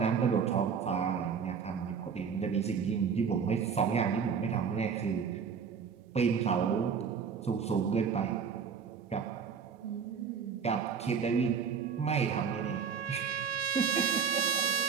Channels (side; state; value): left; quieter; 6.5 dB